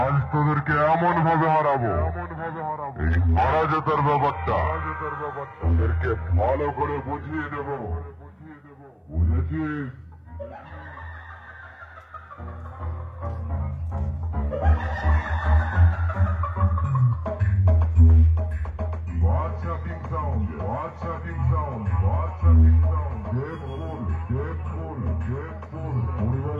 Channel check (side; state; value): both; identical; correlation 1.00